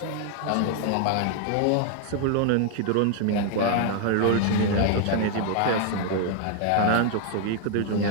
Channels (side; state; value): both; different; correlation 0.00